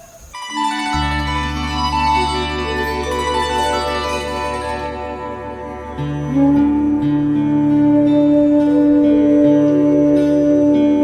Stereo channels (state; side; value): identical; both; correlation 1.00